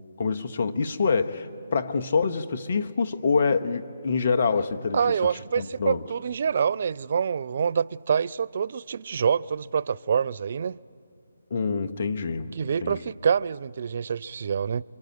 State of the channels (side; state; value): both; inverted; correlation -0.78